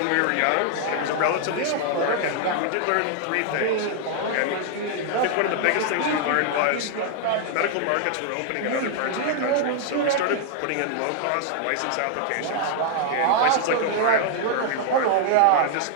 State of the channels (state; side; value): different; both; correlation 0.00